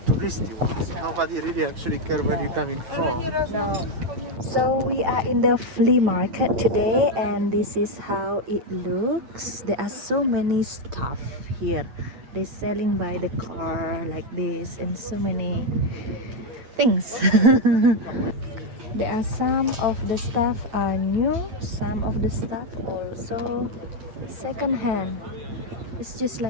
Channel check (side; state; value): left; late; 9.2 ms